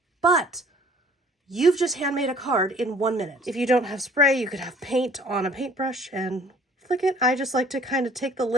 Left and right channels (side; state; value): both; normal; correlation 0.54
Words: But you've just handmade a card in 1 minute. If you don't have spray, you could have paint on a paintbrush and flick it. I just like to kind of take the